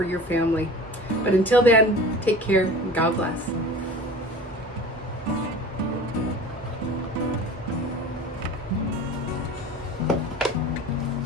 your family. But until then, take care and God bless.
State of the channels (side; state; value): both; normal; correlation 0.39